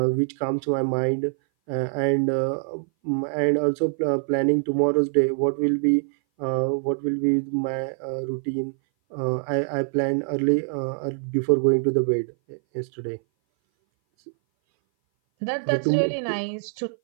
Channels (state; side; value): silent; left; 58 dB below the other